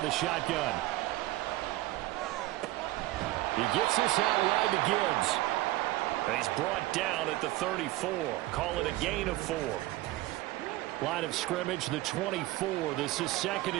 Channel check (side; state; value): left; quieter; 17.7 dB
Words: the shotgun. He gets this out wide to Gibbs. And he's brought down at the 34. Call it a gain of 4. Line of scrimmage, the 24. This is 2nd